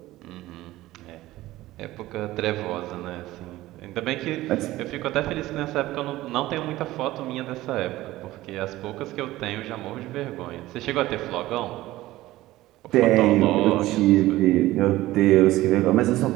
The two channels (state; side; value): quieter; left; 16.7 dB